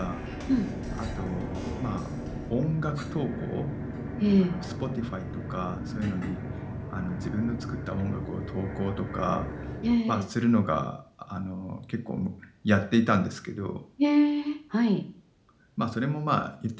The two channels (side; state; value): both; identical; correlation 1.00